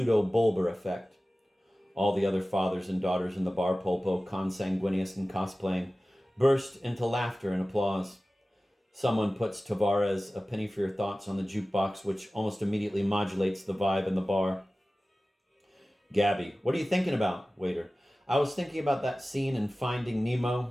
effect. All the other fathers and daughters in the bar, Polpo, consanguineous and cosplaying, burst into laughter and applause. Someone puts Tavares' A Penny for Your Thoughts on the jukebox, which almost immediately modulates the vibe in the bar. Gabby, what are you thinking about, waiter? I was thinking about that scene in Finding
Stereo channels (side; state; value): both; normal; correlation 0.96